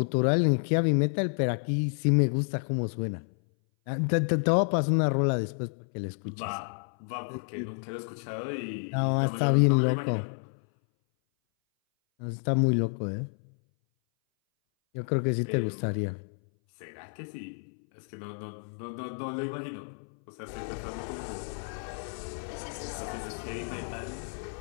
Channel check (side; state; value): right; silent; 58 dB below the other